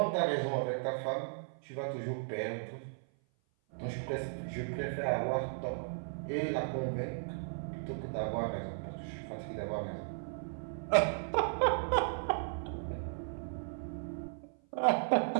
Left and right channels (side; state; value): left; silent; 54 dB below the other